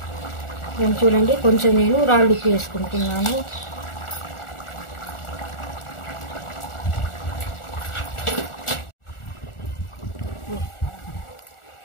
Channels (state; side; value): late; right; 1.4 ms